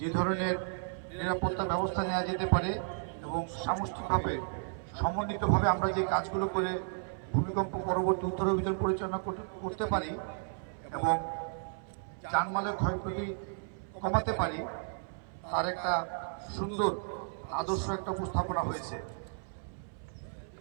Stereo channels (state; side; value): silent; left; 55 dB below the other